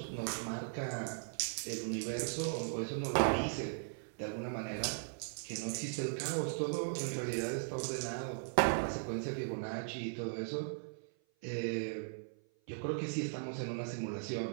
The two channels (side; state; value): left; silent; 52 dB below the other